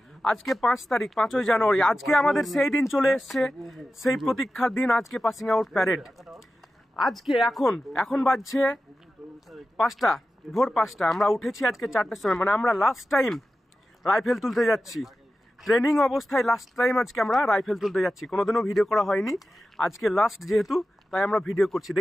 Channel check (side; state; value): both; normal; correlation 0.93